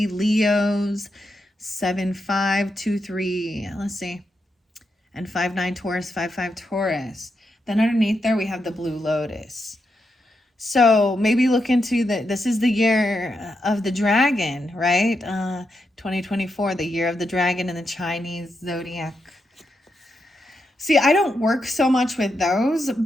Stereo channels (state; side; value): normal; both; correlation 0.84